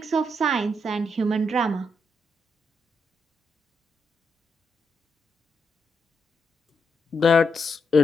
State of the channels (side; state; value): both; normal; correlation 0.81